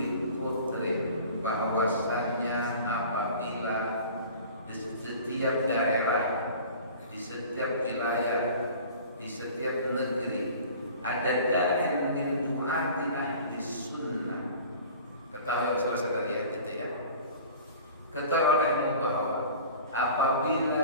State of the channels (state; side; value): inverted; both; correlation -0.43